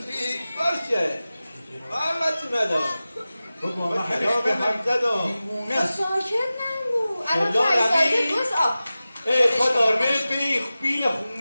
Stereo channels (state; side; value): inverted; both; correlation -0.96